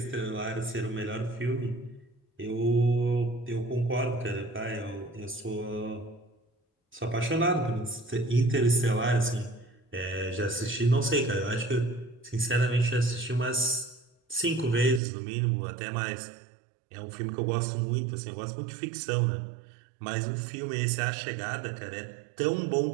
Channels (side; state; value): left; drops out; at 15.0 s